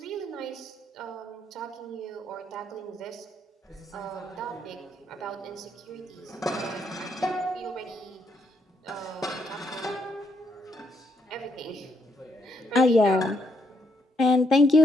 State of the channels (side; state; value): both; normal; correlation 0.75